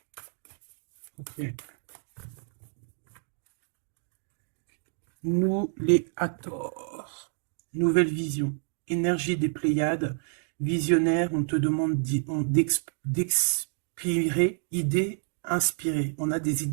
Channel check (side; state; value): left; silent; digital silence